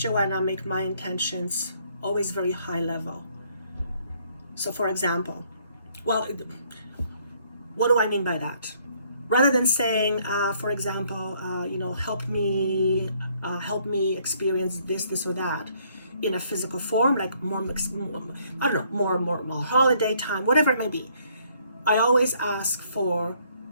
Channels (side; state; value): both; inverted; correlation -0.66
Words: make my intentions always very high level. So for example, well, what do I mean by that? Rather than saying, for example, help me experience this or that in a physical form, like more holiday time, whatever it may be. I always ask for,